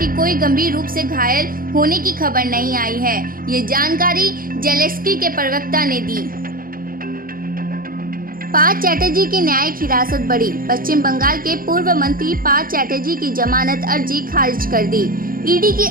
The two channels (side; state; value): left; late; 0.41 ms